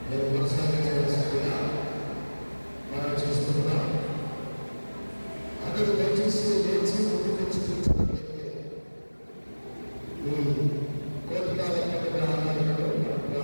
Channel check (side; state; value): both; inverted; correlation -1.00